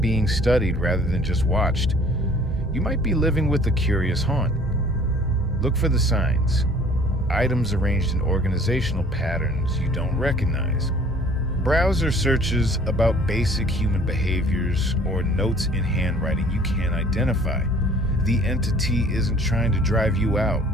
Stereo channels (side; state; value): both; normal; correlation 0.53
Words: being studied rather than just watched, you might be living with a curious haunt. Look for the signs. Items arranged in organizational patterns you don't recognize. Browser searches about basic human behaviors or notes in handwriting you can't identify. The entity isn't trying to drive you out.